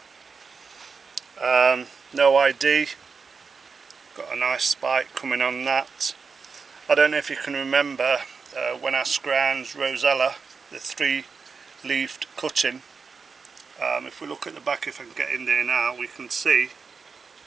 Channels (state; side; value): quieter; left; 5.1 dB